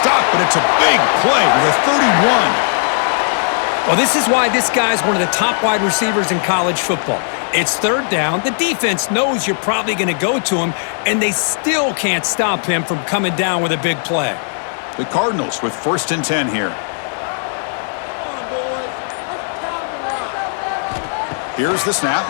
but it's a big play with a 31. Well, this is why this guy's one of the top wide receivers in college football. It's 3rd down. The defense knows you're probably going to go to him, and they still can't stop him from coming down with a big play. The Cardinals with 1st and 10 here. Here's the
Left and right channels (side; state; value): right; silent; digital silence